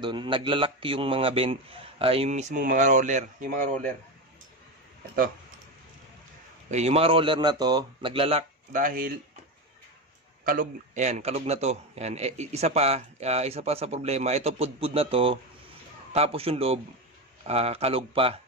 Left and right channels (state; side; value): normal; both; correlation 0.16